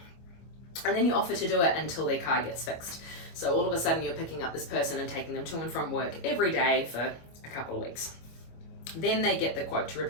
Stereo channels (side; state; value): right; late; 25 ms